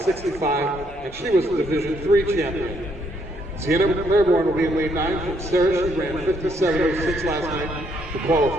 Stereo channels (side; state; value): both; normal; correlation 0.72